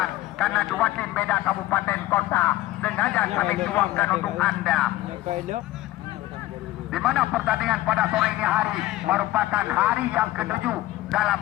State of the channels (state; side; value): quieter; right; 16.2 dB